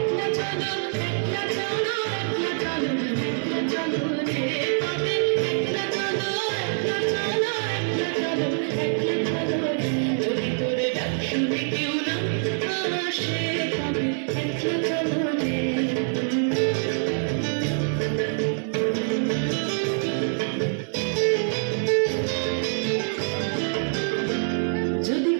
চলো, একলা চলো, একলা চলো, একলা চলো রে। তবে একলা চলো, একলা চলো, একলা চলো, একলা চলো রে। যদি তোর ডাক শুনে কেউ না আসে তবে একলা চলো রে। যদি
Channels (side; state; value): left; silent; digital silence